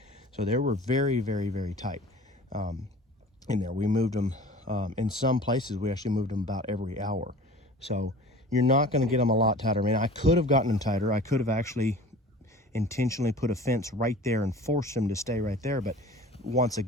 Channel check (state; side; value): normal; both; correlation 0.42